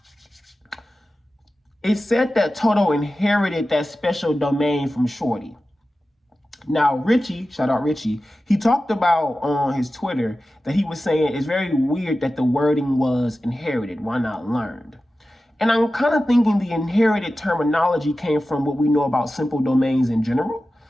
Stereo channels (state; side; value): normal; both; correlation 0.94